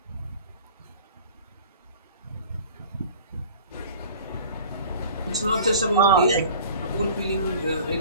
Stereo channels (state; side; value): inverted; both; correlation -0.44